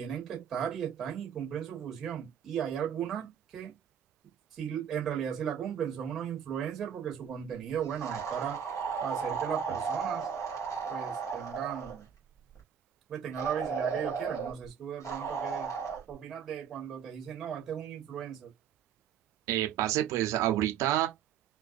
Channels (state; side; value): quieter; left; 8.4 dB